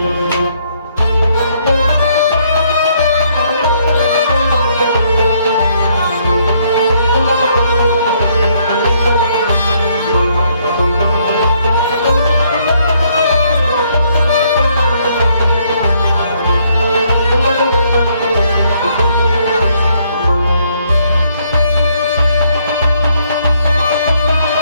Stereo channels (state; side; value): inverted; both; correlation -0.69